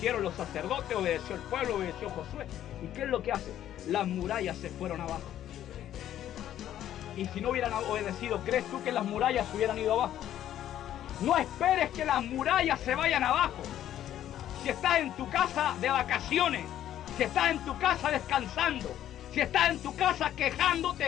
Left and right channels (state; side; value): quieter; right; 11.6 dB